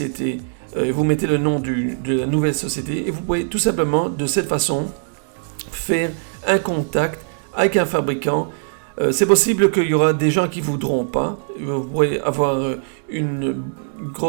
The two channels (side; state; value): left; silent; digital silence